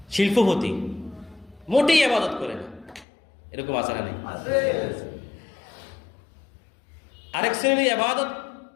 শিল্পপতি, মোটেই ইবাদত করে না। এরকম আছে না? নেই? আরেক শ্রেণী ইবাদত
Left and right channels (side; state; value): right; drops out; at 3.1 s